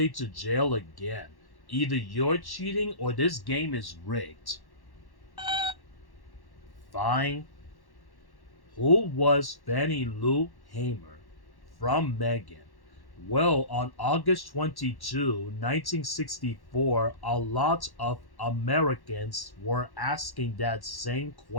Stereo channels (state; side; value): late; right; 1.1 ms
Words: to jail again. Either you're cheating or this game is rigged. Fine. Who was Fannie Lou Hamer? From Megan. Well, on August 22, 1964, a lot of Americans were asking that same